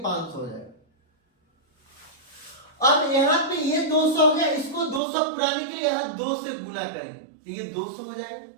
500 हो जाएगा। अब यहां पे ये 200 हो गया, इसको 200 पुराने के लिए यहां 2 से गुना करेंगे तो ये 200 हो जाएगा,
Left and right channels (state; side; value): drops out; left; at 5.0 s